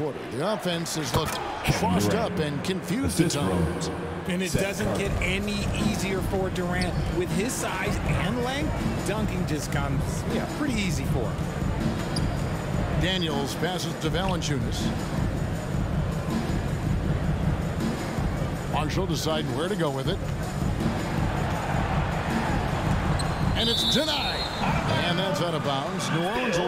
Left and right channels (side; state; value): both; identical; correlation 1.00